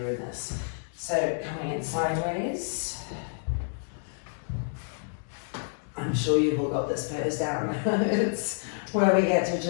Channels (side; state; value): right; silent; digital silence